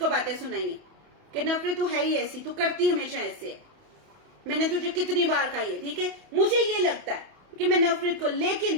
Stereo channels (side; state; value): left; late; 28 ms